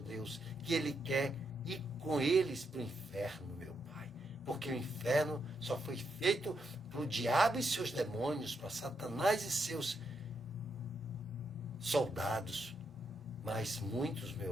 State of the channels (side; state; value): both; normal; correlation 0.81